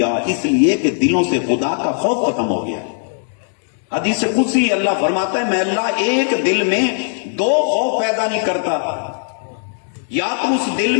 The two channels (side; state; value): right; silent; 67 dB below the other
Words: اس لیے کہ دلوں سے خدا کا خوف ختم ہو گیا۔ حدیث قدسی اللہ فرماتا ہے میں اللہ ایک دل میں دو خوف پیدا نہیں کرتا، یا تو اس دل